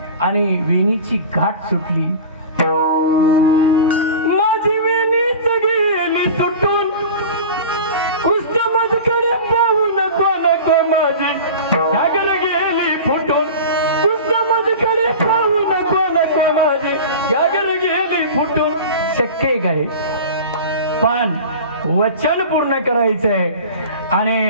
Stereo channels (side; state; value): both; inverted; correlation -0.34